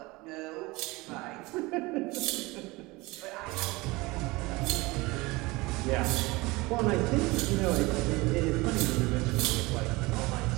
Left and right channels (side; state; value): left; quieter; 22.6 dB